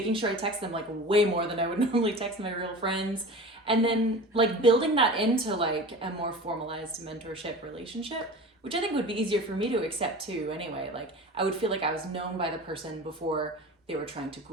sure I text them like way more than I would normally text my real friends. And then like building that into like a more formalized mentorship relationship, which I think would be easier for me to accept too anyway. Like I would feel like I was known by the person before they were trying to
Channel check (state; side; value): normal; both; correlation 0.35